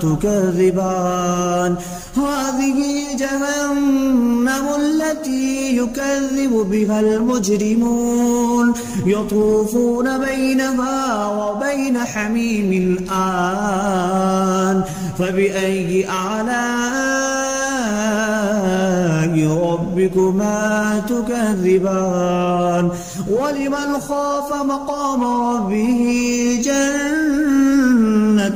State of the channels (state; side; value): identical; both; correlation 1.00